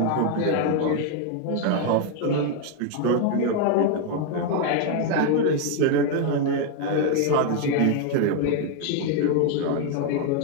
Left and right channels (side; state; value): both; different; correlation 0.01